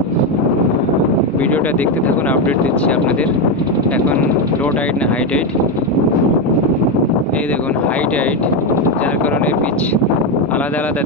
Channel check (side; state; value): both; normal; correlation 0.09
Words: ভিডিওটা দেখতে থাকুন, আপডেট দিচ্ছি আপনাদের। এখন লো টাইড না হাই টাইড, এই দেখুন হাই টাইড, যার কারণে বিচ আলাদা আলাদা